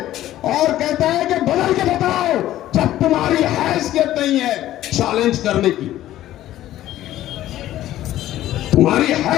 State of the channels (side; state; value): right; quieter; 13.7 dB